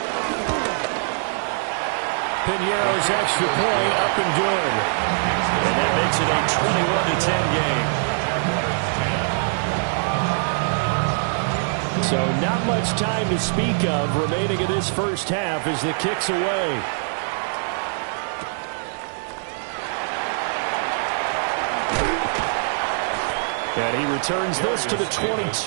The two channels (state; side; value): silent; left; digital silence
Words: Piñeiro's extra point up and good. And that makes it a 21-10 game. So not much time to speak of remaining in this first half as the kick's away. And he returns this to the